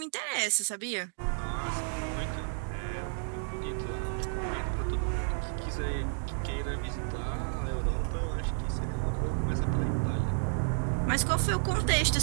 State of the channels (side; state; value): left; silent; digital silence